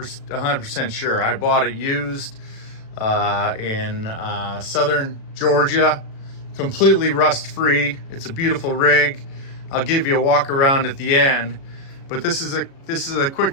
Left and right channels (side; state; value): right; late; 36 ms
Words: sure. I bought it used in southern Georgia, completely rust-free. It's a beautiful rig. I'll give you a walk around at the end, but this is a quick